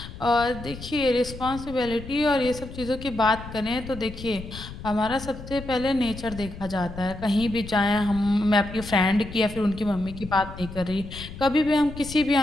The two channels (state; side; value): noise; left; rumble, 12 dB below the sound